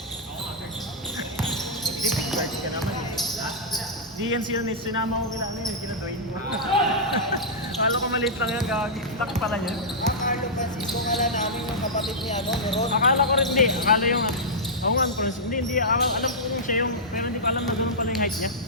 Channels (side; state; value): both; normal; correlation -0.10